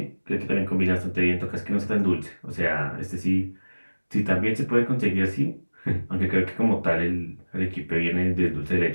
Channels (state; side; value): inverted; both; correlation -1.00